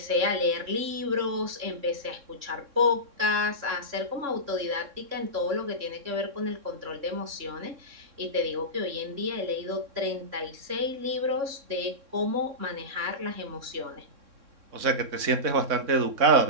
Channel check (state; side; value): late; left; 3.6 ms